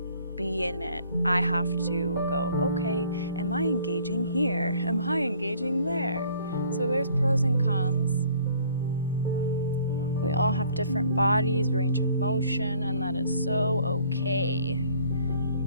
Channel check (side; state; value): both; inverted; correlation -0.58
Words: be in it. I have to go, okay, am I engaging here? Am I engaging there? So there's pros and cons. We all have different bodies, range of motion, and that is so okay.